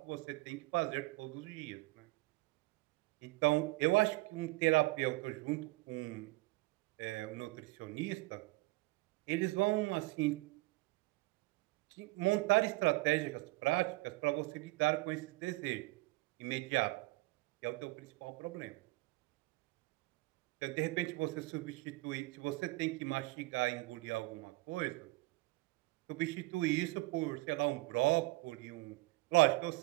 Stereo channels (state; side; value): quieter; left; 22.3 dB